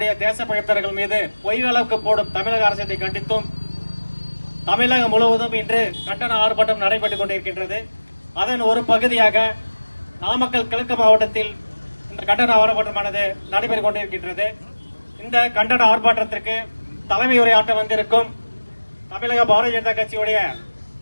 தேசப்பழித்தர்கள் மீது பொய் வழக்கு போடும் தமிழக அரசை கண்டித்தும் தமிழகம் முழுவதும் இன்று கண்டன ஆர்ப்பாட்டம் நடைபெற்றுக் கொண்டிருக்கின்றது. அதன் ஒரு பகுதியாக நாமக்கல் கிழக்கு மாவட்டத்தில் இந்த கண்டன ஆர்ப்பாட்டமானது நடைபெற்றுக் கொண்டிருக்கின்றது. இந்த கண்டன ஆர்ப்பாட்டத்திற்கு தலைமை உரையாற்ற வந்திருக்கும் தமிழக பாரதிய ஜனதா கட்சியுடைய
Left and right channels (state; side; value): inverted; both; correlation -1.00